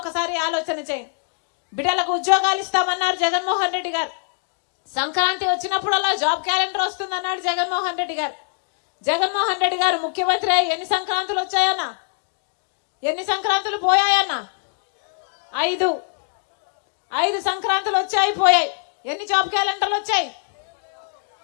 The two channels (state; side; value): silent; right; 64 dB below the other